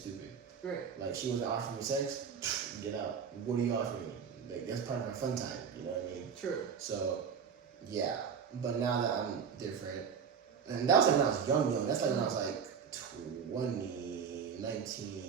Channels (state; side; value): quieter; left; 6.8 dB